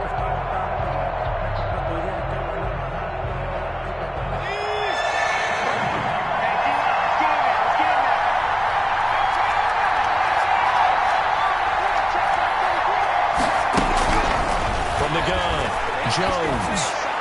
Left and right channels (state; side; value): identical; both; correlation 1.00